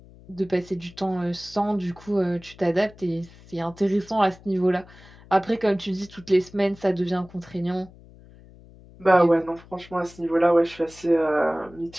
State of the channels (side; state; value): left; noise; hum, 22 dB below the sound